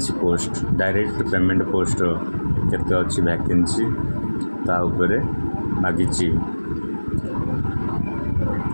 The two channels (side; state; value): both; inverted; correlation -1.00